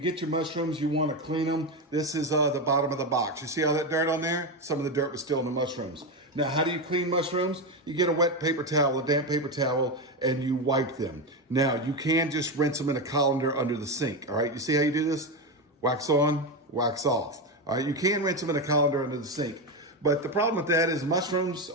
your mushrooms, you want to clean them. This is the bottom of the box. You see all that dirt on there? Some of the dirt was still in the mushrooms. Now, how do you clean mushrooms? You get a wet paper towel, a damp paper towel, and you wipe them. Now, you can just rinse them in a colander under the sink. All right, you see how you do this? Wax on, wax off. All right, you can rinse them in a colander under the sink. But the problem with that is mushrooms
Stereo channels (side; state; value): both; normal; correlation 0.13